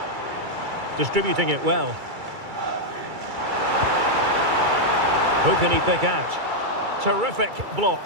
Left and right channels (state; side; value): late; left; 2.3 ms